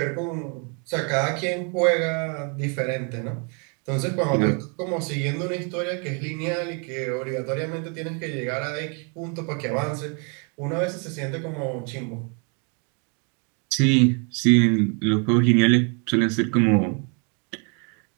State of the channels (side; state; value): left; quieter; 36.7 dB